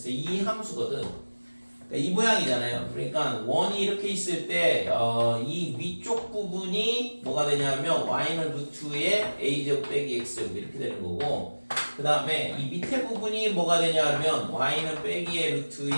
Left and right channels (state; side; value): inverted; both; correlation -1.00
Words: 이 함수거든. 그러니까 이 모양이잖아요. 그러니까 원이 이렇게 있을 때 이 위쪽 부분이 뭐가 되냐면 y는 루트의 a제곱 빼기 x제곱 이렇게 되는 거고 그 다음에 이 밑에 부분이 뭐가 되냐면 y는 빼기의